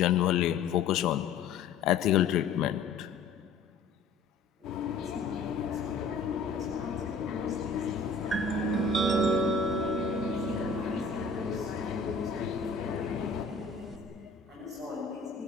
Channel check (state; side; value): quieter; right; 4.5 dB